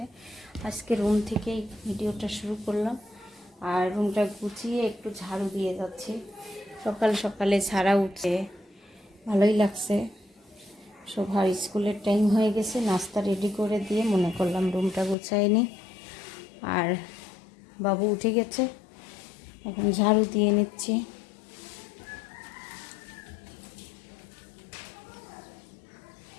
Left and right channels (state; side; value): drops out; right; at 15.2 s